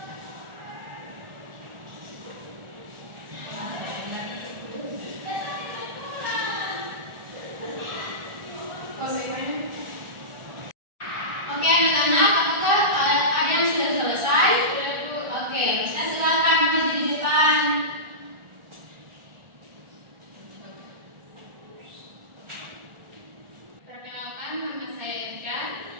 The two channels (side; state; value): left; late; 1.4 ms